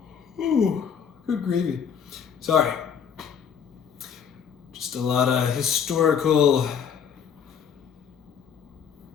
Ooh, good gravy. Sorry. Just a lot of historical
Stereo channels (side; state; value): right; quieter; 7.5 dB